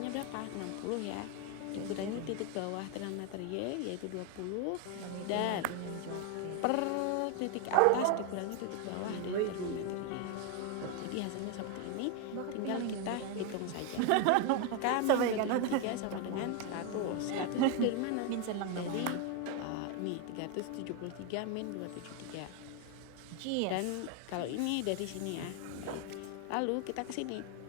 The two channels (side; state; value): both; different; correlation 0.01